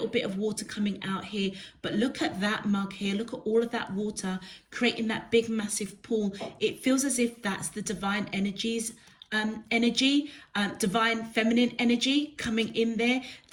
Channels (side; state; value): both; identical; correlation 1.00